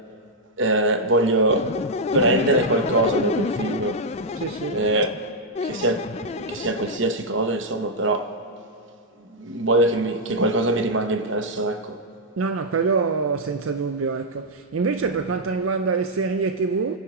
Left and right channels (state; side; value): normal; both; correlation -0.04